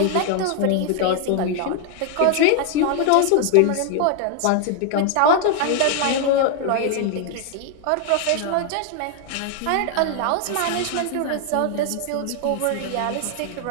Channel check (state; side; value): different; both; correlation 0.00